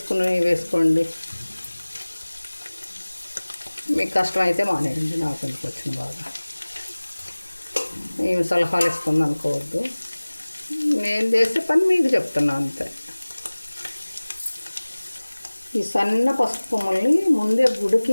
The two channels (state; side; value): inverted; both; correlation -1.00